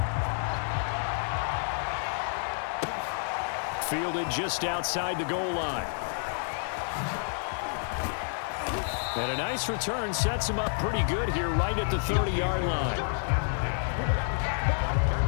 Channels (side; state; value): right; silent; digital silence